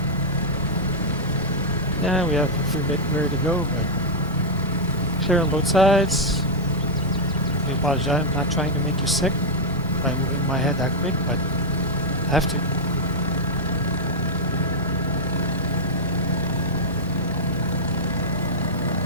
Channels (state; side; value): normal; both; correlation -0.04